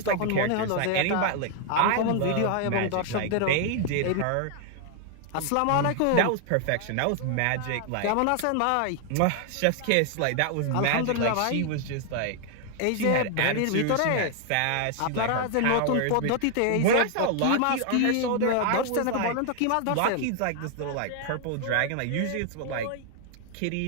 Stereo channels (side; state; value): both; different; correlation 0.00